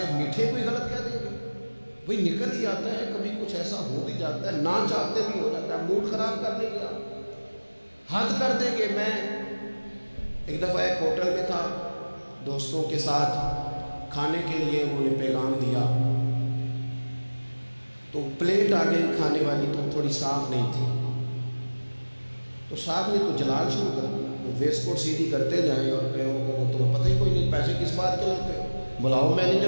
میٹھے کو ہی غلط کہہ دیں گے؟ وہی نکل ہی آتا ہے، کبھی کچھ ایسا ہو بھی جاتا ہے، نہ چاہتے بھی ہو جاتا ہے، موڈ خراب کر دیں گے آپ، حد کر دیں گے۔ میں ایک دفعہ ایک ہوٹل میں تھا، دوستوں کے ساتھ کھانے کے لیے انہوں نے پیغام دیا، تو پلیٹ آ گئی کھانے والی، تو تھوڑی صاف نہیں تھی، تو صاحب نے تو جلال شروع کر دیا، وہ ویسٹ کوٹ سیدھی کرتے جائیں اور کہیں تمہیں پتہ ہی کوئی نہیں، پیسے کس بات کے لیتے ہیں، بلاؤ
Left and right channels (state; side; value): inverted; both; correlation -1.00